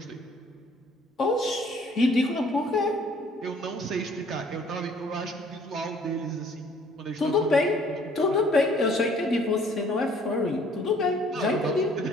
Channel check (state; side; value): normal; both; correlation 0.58